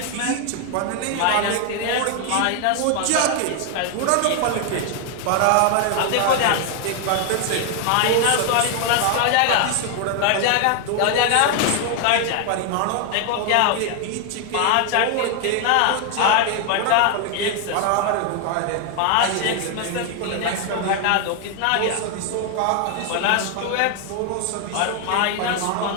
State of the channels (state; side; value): different; both; correlation 0.01